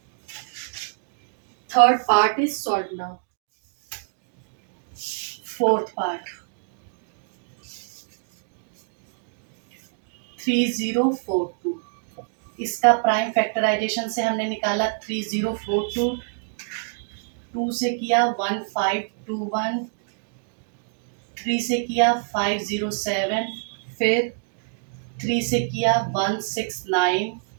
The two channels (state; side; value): silent; left; digital silence